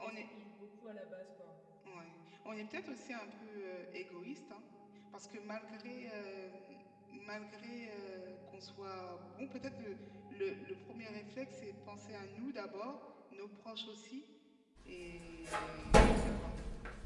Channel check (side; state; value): both; identical; correlation 1.00